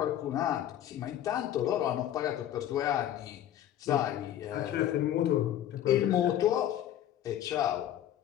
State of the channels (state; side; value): quieter; right; 11.4 dB